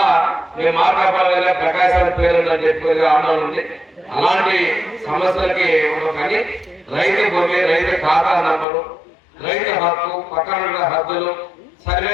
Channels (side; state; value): right; drops out; at 8.7 s